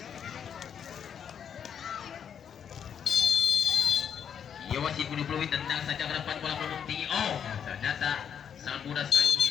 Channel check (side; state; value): right; quieter; 8.1 dB